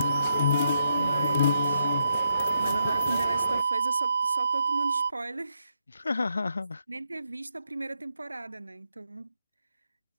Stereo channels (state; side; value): inverted; both; correlation -0.78